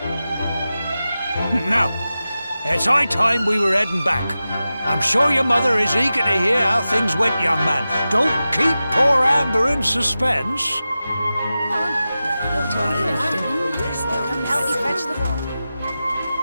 Now, it's high time we were heading back. I'm sure your mother is eager to hear how things went, young man. Don't keep poor Amber in suspense.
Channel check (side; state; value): both; inverted; correlation -0.94